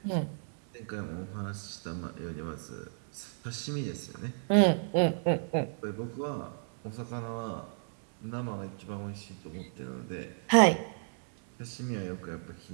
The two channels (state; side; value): silent; left; 56 dB below the other